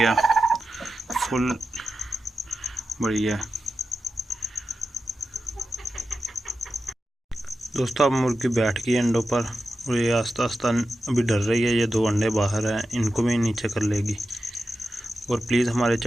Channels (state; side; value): normal; both; correlation 0.91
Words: फुल बड़ी है। दोस्तों अब मुर्गी बैठ गई अंडों पर और ये आस्ता आस्ता अभी डर रही है। ये दो अंडे बाहर हैं, इनको भी नीचे कर लेगी। और प्लीज़ हमारे